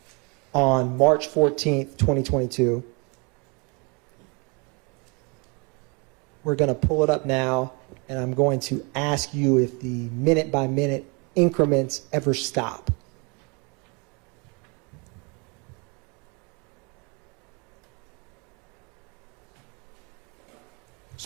on March 14th, 2022, we're going to pull it up now, and I'm going to ask you if the minute-by-minute increments ever stop.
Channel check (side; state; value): left; quieter; 31.8 dB